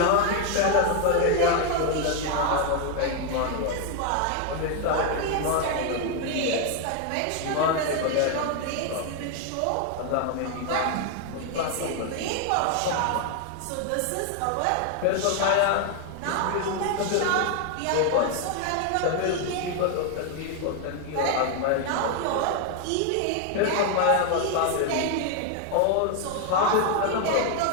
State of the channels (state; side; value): different; both; correlation 0.01